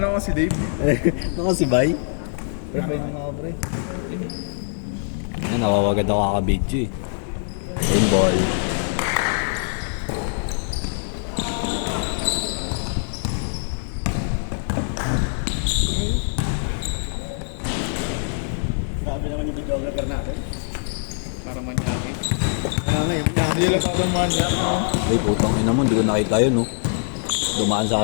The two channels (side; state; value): right; silent; digital silence